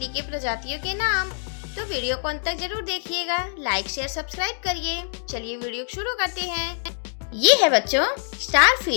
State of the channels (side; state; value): right; silent; digital silence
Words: के प्रजातियों के नाम। तो वीडियो को अंत तक जरूर देखिएगा, लाइक शेयर सब्सक्राइब करिए। चलिए वीडियो शुरू करते हैं। ये है बच्चों स्टार